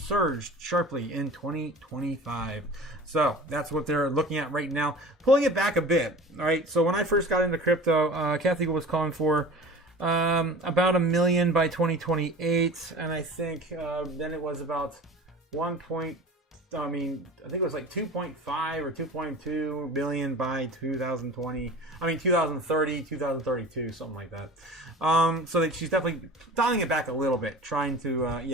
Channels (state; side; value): normal; both; correlation 0.39